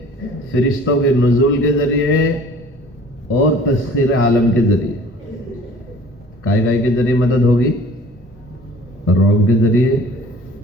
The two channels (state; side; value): normal; both; correlation 0.49